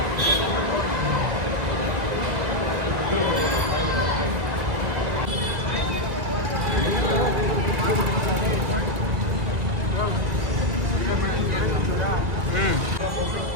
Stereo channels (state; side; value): late; left; 2.0 ms